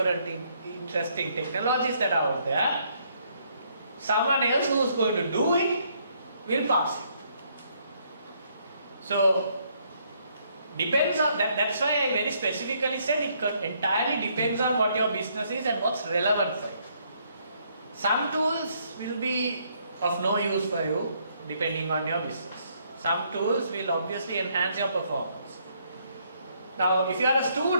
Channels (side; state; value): both; inverted; correlation -0.70